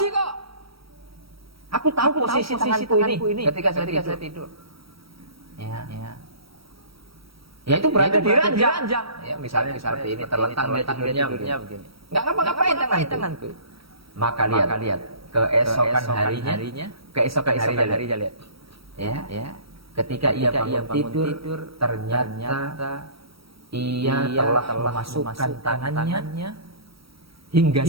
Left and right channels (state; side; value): late; left; 0.75 ms